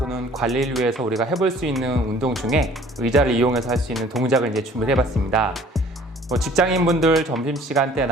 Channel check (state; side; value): normal; both; correlation 0.53